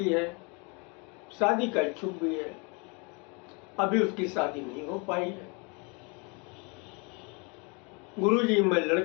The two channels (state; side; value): quieter; right; 31.8 dB